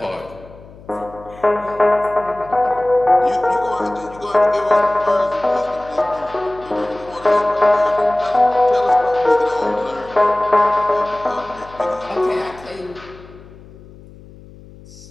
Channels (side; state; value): left; noise; hum, 21 dB below the sound